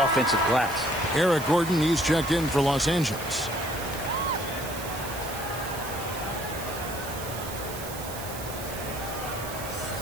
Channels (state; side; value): noise; right; hiss, 11 dB below the sound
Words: offensive glass. Eric Gordon, he's checked in for Los Angeles.